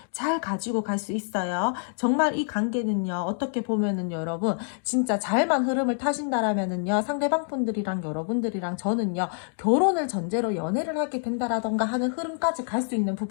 잘 가지고 갈 수 있어요. 정말 이 관계는요. 어떻게 보면은 여러분 진짜 잘만 흐름을 타신다라면은요. 상대방 분들이랑 여러분들이랑 저는요. 결혼을 전제로 연애를 하게 된다라던가 하는 흐름까지 갈 수 있는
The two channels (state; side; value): silent; right; digital silence